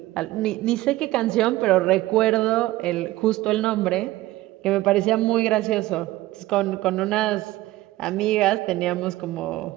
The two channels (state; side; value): quieter; left; 17.2 dB